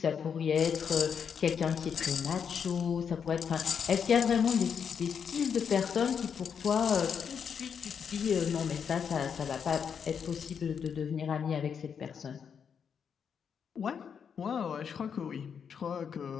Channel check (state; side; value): quieter; right; 7.1 dB